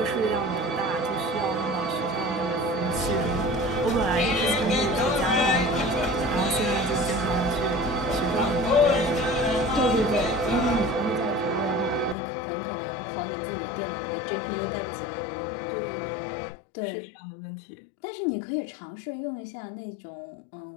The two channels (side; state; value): right; drops out; at 12.2 s